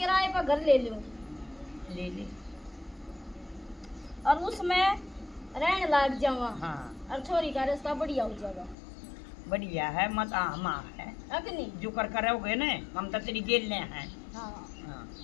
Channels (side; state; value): right; drops out; at 8.8 s